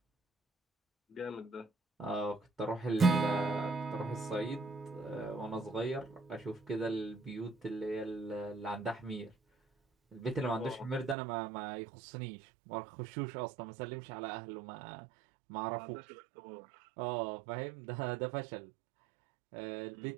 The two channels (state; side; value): drops out; left; at 11.2 s